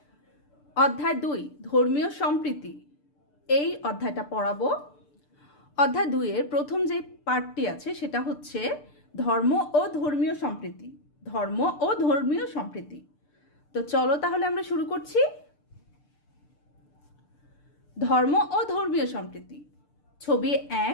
অধ্যায় 2 ধর্মীয় সম্প্রীতি এই অধ্যায়টা পড়াবো। অধ্যায় 2 এর প্রথম যে পার্টটি আছে সেটা হচ্ছে ধর্ম ও ধর্মীয় সম্প্রীতি। ধর্ম ও ধর্মীয় সম্প্রীতি। তো চলো তাহলে আমরা শুরু করছি। ধর্ম ও ধর্মীয় সম্প্রীতি। ছবি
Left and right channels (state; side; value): late; right; 6.8 ms